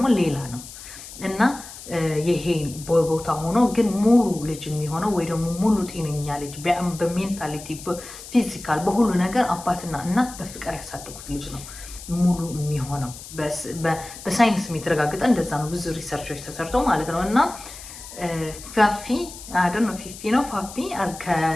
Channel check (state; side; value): noise; left; hiss, 14 dB below the sound